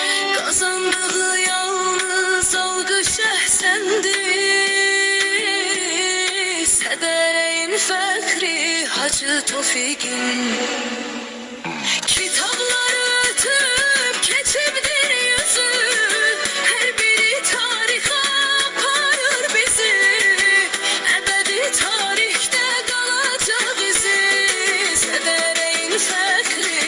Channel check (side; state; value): both; identical; correlation 1.00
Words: Kazandığı yalnız algı şehsendi. Sedereğin fekri Hacı Tofik'in. Kitapları ötüp geçimdir yüzü. Her biri tarihe aparır bizi. Ebedi tarihte kalacak izi. Sedereğin